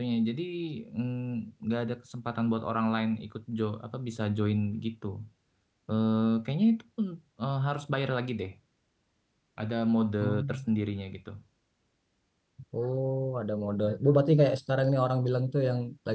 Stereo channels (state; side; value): identical; both; correlation 1.00